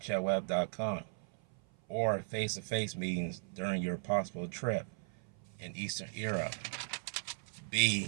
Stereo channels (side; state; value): left; silent; 53 dB below the other